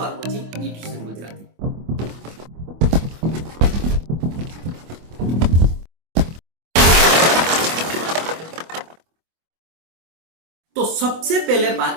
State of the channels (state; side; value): late; left; 25 ms